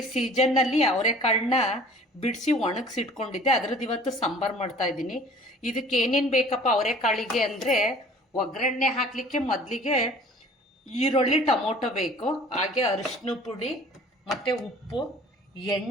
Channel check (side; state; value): both; normal; correlation 0.49